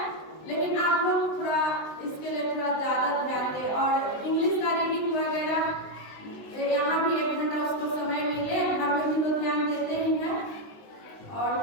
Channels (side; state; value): right; late; 19 ms